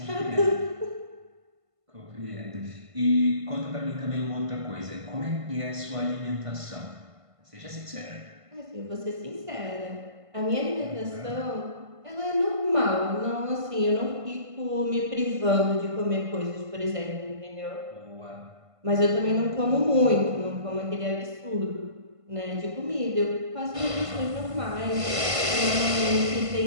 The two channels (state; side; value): late; left; 1.5 ms